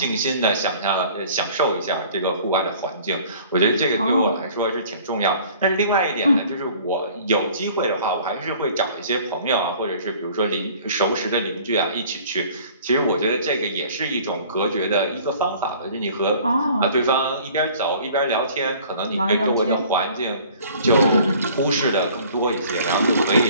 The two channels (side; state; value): both; inverted; correlation -0.50